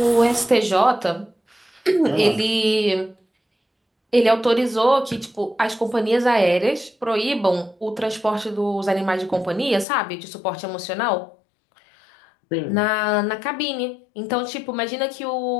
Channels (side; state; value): right; drops out; at 9.9 s